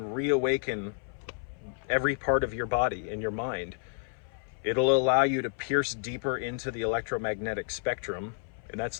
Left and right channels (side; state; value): right; silent; 58 dB below the other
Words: reawaken every part of your body and your mind, it'll allow you to pierce deeper into the electromagnetic spectrum, and